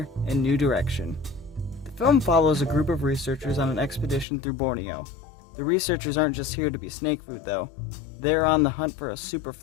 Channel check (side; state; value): right; drops out; at 4.2 s